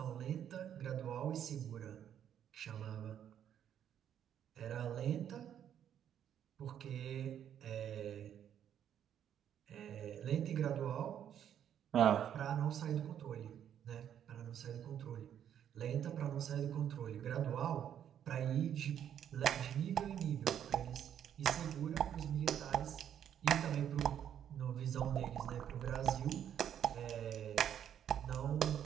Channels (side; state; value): left; quieter; 9.6 dB